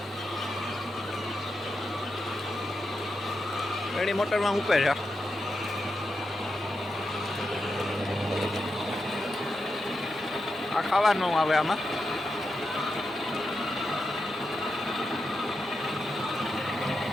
એની મોટરમાં ઉપે છે. આ ખાવાનું આવે આમાં.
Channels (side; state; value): both; normal; correlation 0.87